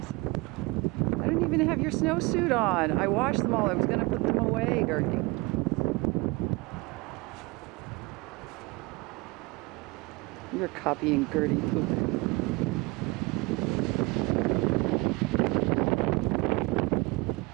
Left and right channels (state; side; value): quieter; left; 24.2 dB